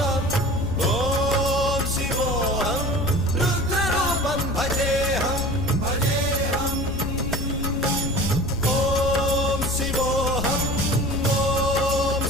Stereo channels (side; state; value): left; noise; rumble, 6 dB below the sound